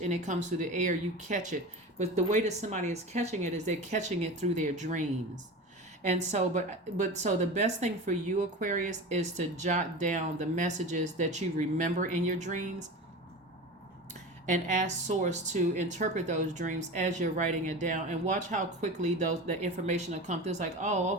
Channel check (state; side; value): normal; both; correlation 0.30